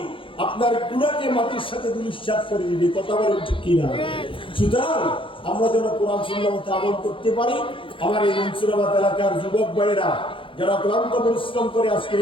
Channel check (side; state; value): right; late; 0.25 ms